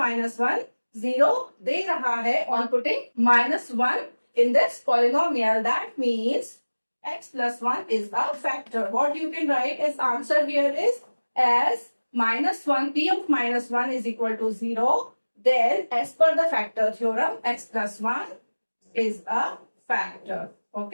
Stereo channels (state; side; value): inverted; both; correlation -1.00